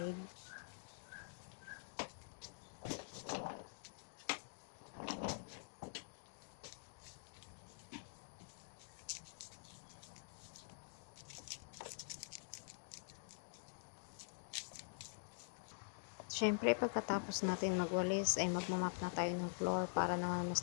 Siyempre, pagkatapos natin magwalis ay magmamap na tayo ng floor para naman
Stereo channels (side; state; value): right; silent; digital silence